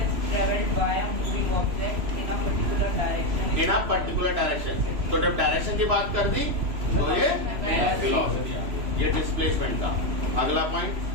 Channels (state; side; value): late; left; 3.0 ms